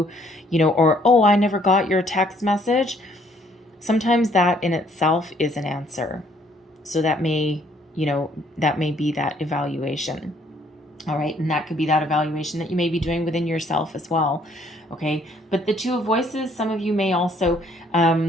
or, oh, I never got your text message. Sometimes that in itself is an answer. So that may be that evaluation. All right. And that could be that evaluation that you may be doing within yourself as well. Okay. But the Two of Voices, some of you may also,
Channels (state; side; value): normal; both; correlation 0.64